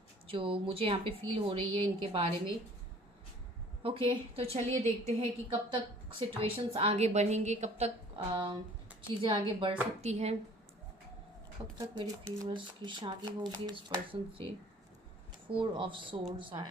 जो मुझे यहाँ पे फील हो रही है इनके बारे में। ओके, तो चलिए देखते हैं कि कब तक सिचुएशंस आगे बढ़ेंगे, कब तक चीज़ें आगे बढ़ सकती हैं, कब तक मेरे व्यूअर्स की शादी होगी इस पर्सन से। 4 ऑफ सोर्ड्स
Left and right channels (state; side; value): normal; both; correlation 0.52